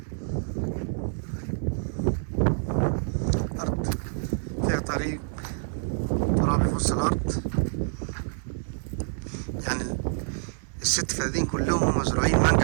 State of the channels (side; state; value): left; silent; 60 dB below the other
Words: أرض فيها طريق ترابي في وسط الأرض، يعني الست فدادين كلهم مزروعين